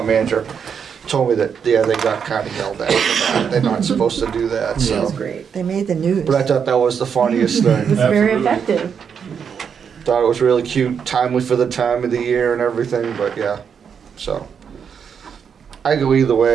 manager, told me that yeah, they got kind of yelled at for that. They're not supposed to do that. That was So, great. They made the news. but I thought that was the funniest It thing. was very Absolutely. effective. Thought it was really cute, timely for the time of the year and everything. But yeah, so I go either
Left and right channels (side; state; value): left; quieter; 7.1 dB